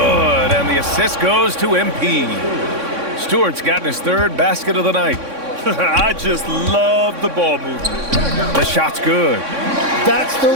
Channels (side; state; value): left; late; 3.6 ms